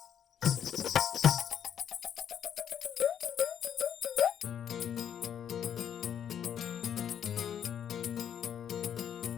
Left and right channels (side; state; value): right; quieter; 9.0 dB